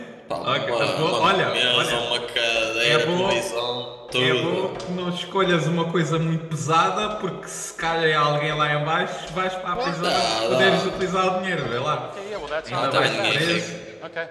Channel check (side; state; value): both; identical; correlation 1.00